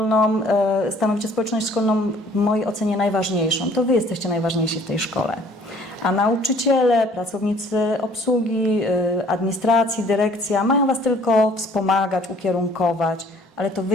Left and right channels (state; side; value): normal; both; correlation 0.56